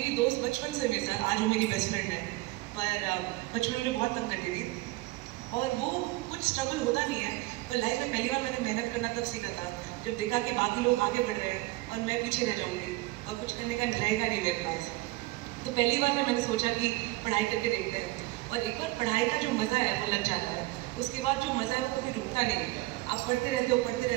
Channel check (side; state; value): left; quieter; 20.3 dB